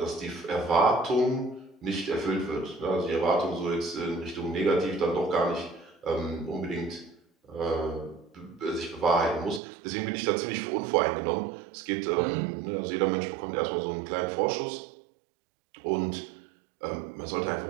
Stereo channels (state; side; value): drops out; left; at 9.6 s